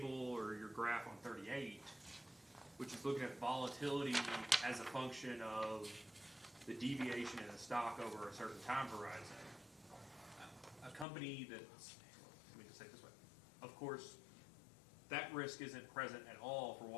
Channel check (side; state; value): right; drops out; at 11.1 s